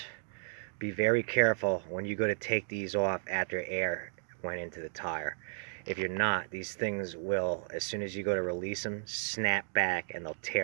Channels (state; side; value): silent; left; digital silence